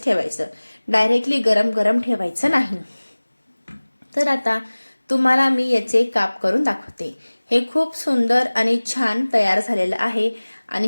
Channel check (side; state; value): both; inverted; correlation -1.00